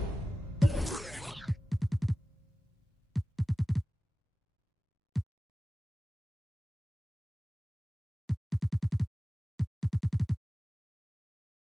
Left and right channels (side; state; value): both; normal; correlation 0.96